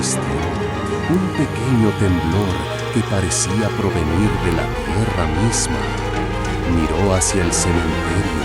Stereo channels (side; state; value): both; identical; correlation 1.00